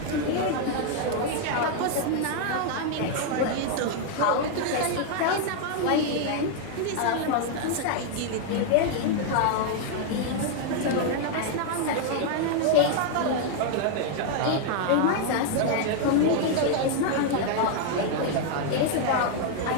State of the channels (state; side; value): different; both; correlation 0.00